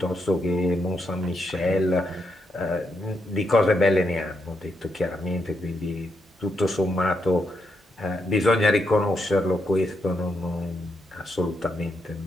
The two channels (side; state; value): both; normal; correlation 0.81